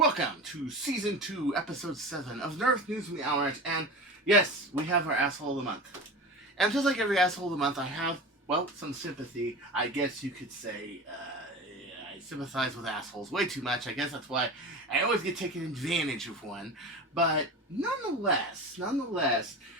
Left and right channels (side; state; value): both; normal; correlation 0.30